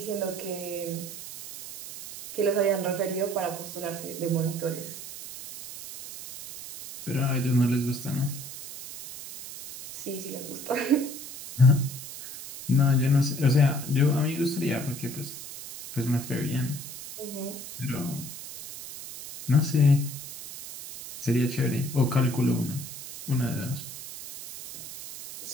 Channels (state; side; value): noise; right; hiss, 11 dB below the sound